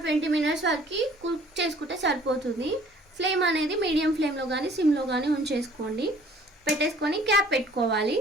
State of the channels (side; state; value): both; normal; correlation 0.54